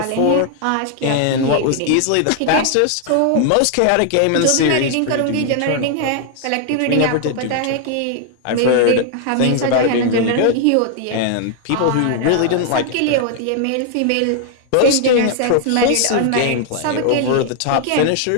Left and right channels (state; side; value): different; both; correlation 0.00